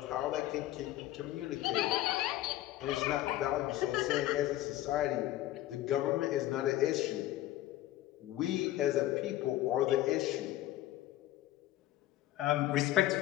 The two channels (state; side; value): quieter; right; 14.9 dB